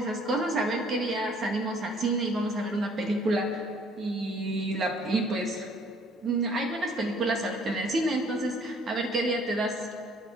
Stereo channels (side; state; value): both; normal; correlation 0.58